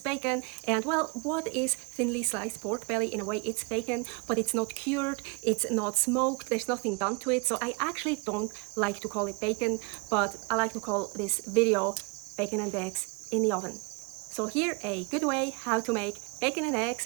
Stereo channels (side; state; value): left; quieter; 31.8 dB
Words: bacon. And well, what is thinly sliced pork belly? In a way, it's bacon, but it's not cured, it's not smoked, there's nothing done to it. So I actually don't like to call it bacon, but I like to call this video bacon and eggs in the oven. So here a good way how to make bacon and